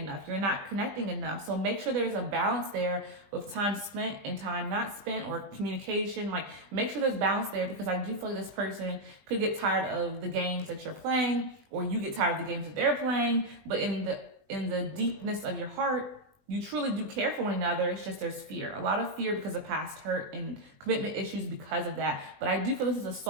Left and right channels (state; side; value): late; left; 20 ms